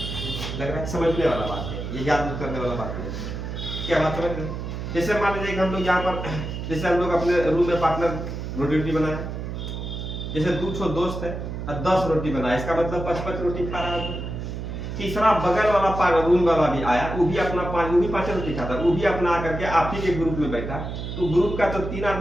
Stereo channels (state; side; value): noise; right; hum, 6 dB below the sound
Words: लग रहा है, समझने वाला बात है, ये याद करने वाला बात है। क्या बात समझ रहे? जैसे मान लीजिए कि हम लोग यहाँ पर, जैसे हम लोग अपने रूम में पार्टनर रोटी बनाया, जैसे 2 दोस्त है और 10 रोटी बनाया, इसका मतलब 5 रोटी खा रहा है। तीसरा बगल वाला रूम वाला भी आया, वो भी अपना 5 रोटी खाता, वो भी अपना आकर के आप ही के ग्रुप में बैठा, तो ग्रुप का तो 3